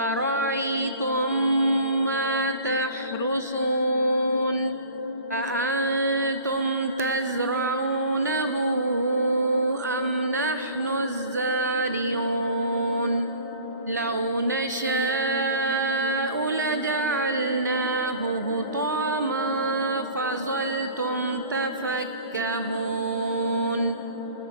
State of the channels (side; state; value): both; inverted; correlation -0.46